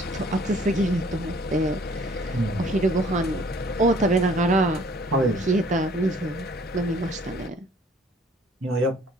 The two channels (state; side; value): normal; both; correlation 0.56